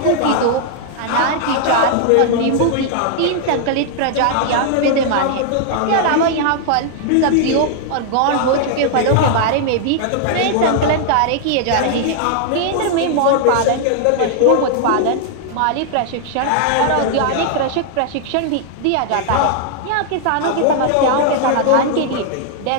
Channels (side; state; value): both; different; correlation -0.01